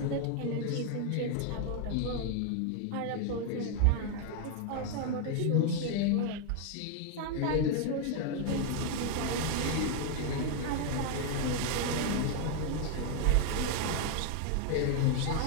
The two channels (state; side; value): different; both; correlation 0.00